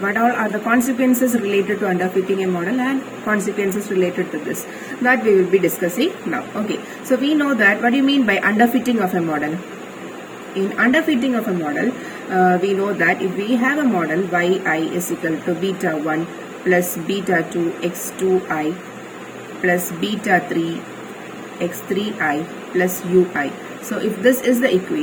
all are the consequences related to underfitting a model and consequences related to this, that we will be discussing now. Okay, so we know that what do you mean by underfitting of a model? In underfitting of a model, we know that if we have a model yi is equal to beta 1 plus beta 2 x2i plus beta 3 x3i plus ui. So if this is the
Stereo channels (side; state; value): both; identical; correlation 1.00